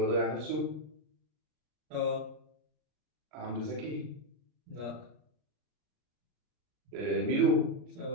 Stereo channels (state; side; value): late; left; 39 ms